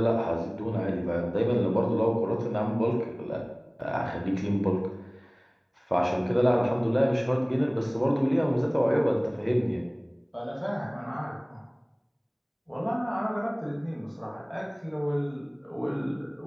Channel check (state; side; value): identical; both; correlation 1.00